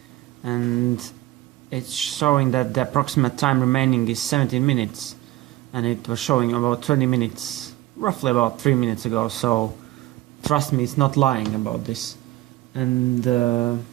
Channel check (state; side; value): quieter; left; 17.3 dB